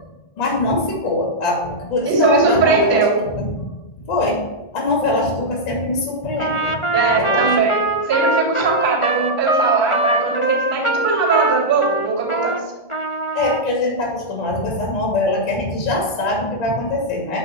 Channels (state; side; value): late; right; 1.4 ms